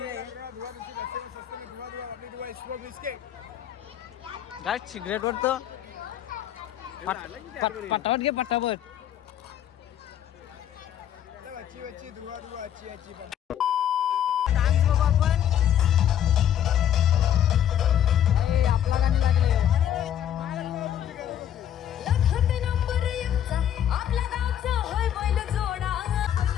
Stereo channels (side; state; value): right; quieter; 10.2 dB